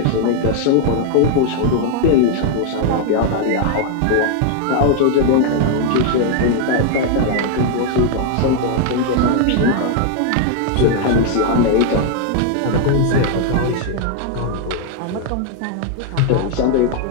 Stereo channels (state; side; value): different; both; correlation 0.00